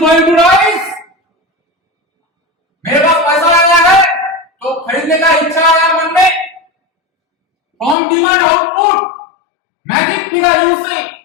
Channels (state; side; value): drops out; right; at 8.0 s